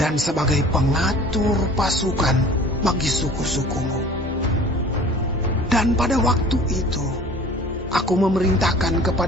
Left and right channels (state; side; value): normal; both; correlation 0.46